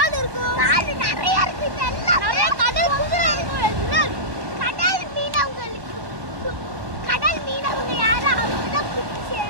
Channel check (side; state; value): left; late; 1.1 ms